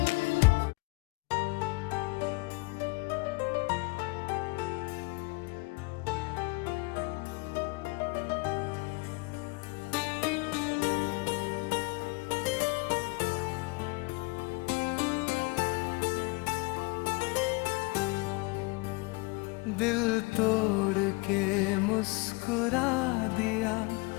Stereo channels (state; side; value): quieter; right; 27.1 dB